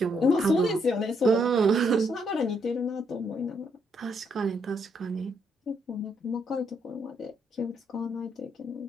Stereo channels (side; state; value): both; normal; correlation 0.74